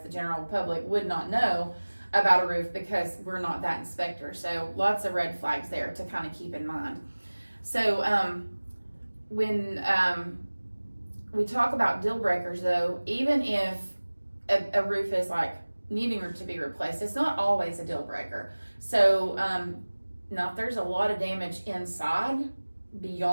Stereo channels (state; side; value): inverted; both; correlation -1.00